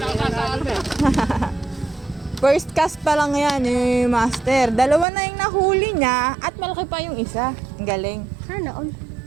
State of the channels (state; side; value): drops out; left; at 5.1 s